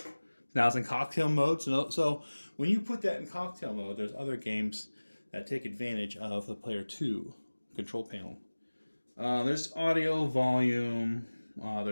Now it's in cocktail mode. So when you put that in cocktail mode, there's other games that take advantage of the player 2 control panel. There's audio volume,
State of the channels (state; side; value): inverted; both; correlation -1.00